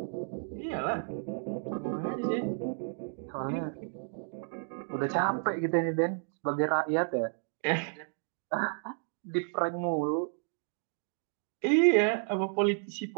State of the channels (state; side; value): silent; left; 56 dB below the other